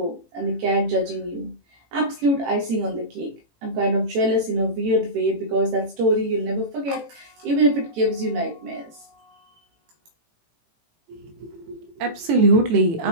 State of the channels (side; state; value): left; late; 18 ms